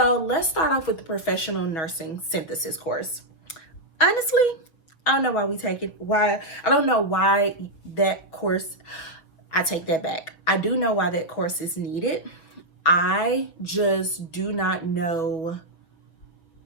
let's start off with the professional nursing synthesis course. Honestly, I don't know why we take it. I don't know why that course, I take that back. I do know why that course is needed. I just do not know.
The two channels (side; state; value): right; late; 6.2 ms